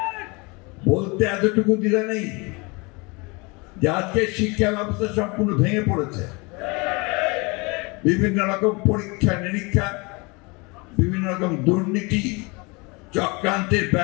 বলতে এতটুকু দিলে নেই যে আজকে শিক্ষা ব্যবস্থা সম্পূর্ণ ভেঙে পড়েছে। বিভিন্ন রকম পরীক্ষা নিরীক্ষা, বিভিন্ন রকম দুর্নীতি চক্রান্তের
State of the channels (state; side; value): quieter; right; 27.9 dB